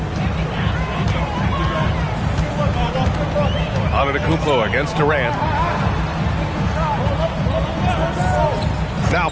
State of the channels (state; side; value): identical; both; correlation 1.00